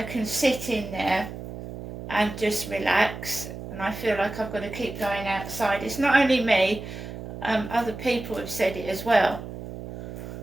can sit in there and just relax, and I feel like I've got to keep going outside. It's not only me, other people have said it as well.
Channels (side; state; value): right; noise; hum, 10 dB below the sound